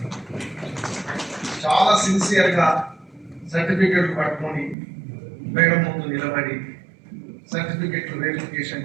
me, చాలా సిన్సియర్గా సర్టిఫికెట్లు పట్టుకొని madam ముందు నిలబడి సర్టిఫికెట్లు verification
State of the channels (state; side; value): drops out; left; at 4.8 s